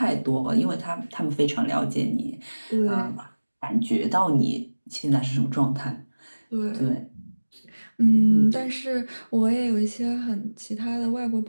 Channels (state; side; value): inverted; both; correlation -1.00